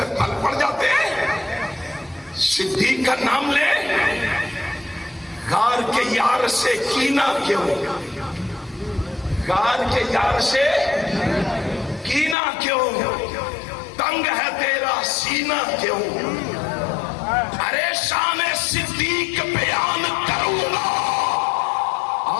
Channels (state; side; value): drops out; right; at 12.4 s